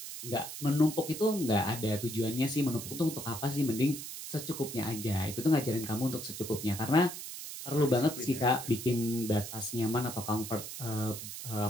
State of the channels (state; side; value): noise; right; hiss, 9 dB below the sound